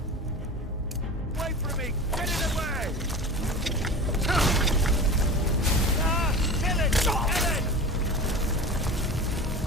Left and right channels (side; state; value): both; normal; correlation 0.32